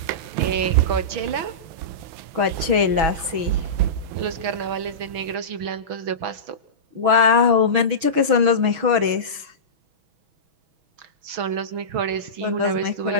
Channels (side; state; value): left; late; 6.2 ms